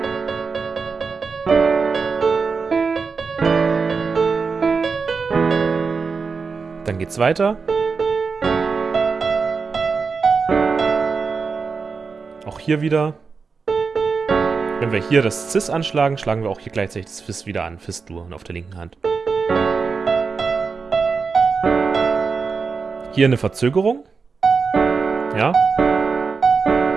Dann geht's weiter. Auch hier wieder. Wenn wir hier das Cis anschlagen, schlagen wir auch hier gleichzeitig das Fis wieder an. Fis-Dur auf der linken Hand. Hier eine Verzögerung. Ja.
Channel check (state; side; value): quieter; left; 5.0 dB